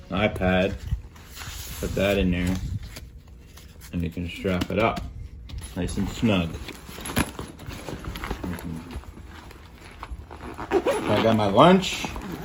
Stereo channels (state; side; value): identical; both; correlation 1.00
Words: an iPad, put that in there, and you can strap it up nice and snug. I got my lunch,